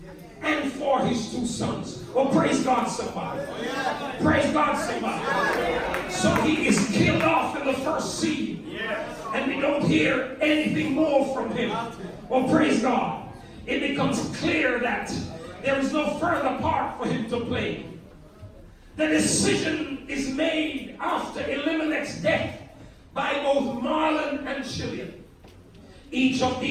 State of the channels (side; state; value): both; identical; correlation 1.00